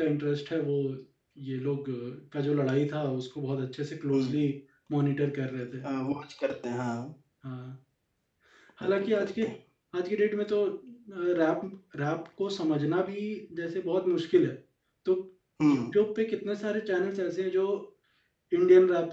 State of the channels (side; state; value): both; identical; correlation 1.00